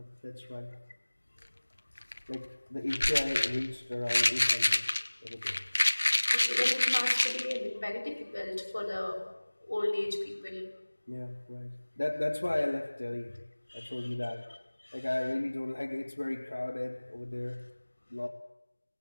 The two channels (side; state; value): both; inverted; correlation -1.00